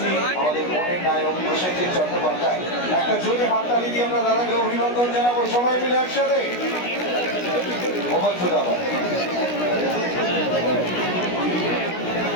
আমাদের মনের নায়ক প্রসেনজিৎ চট্টোপাধ্যায়। একটা জোরে হাততালি দিয়ে আমরা দাদাকে অভিনন্দন জানাবো সবাই মিলে একসাথে। মোবাইল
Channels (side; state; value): right; late; 16 ms